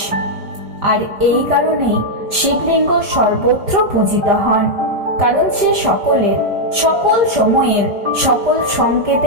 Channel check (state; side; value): late; left; 5.0 ms